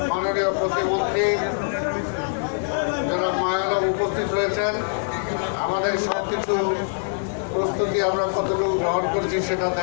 মাননীয় প্রতিমন্ত্রী জনাব মায়ানব উপস্থিত হয়েছেন। আমাদের সব কিছু প্রস্তুতি আমরা কতটুকু গ্রহণ করেছি সেটা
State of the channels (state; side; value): silent; right; 63 dB below the other